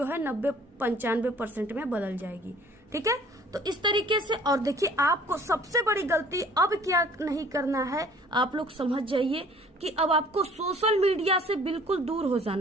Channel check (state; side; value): normal; both; correlation 0.53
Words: है 90-95% में बदल जाएगी, ठीक है। तो इस तरीके से, और देखिए, आपको सबसे बड़ी गलती अब क्या नहीं करना है, आप लोग समझ जाइए कि अब आपको सोशल मीडिया से बिल्कुल दूर हो